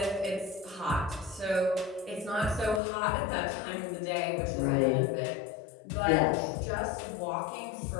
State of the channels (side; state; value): right; drops out; at 2.8 s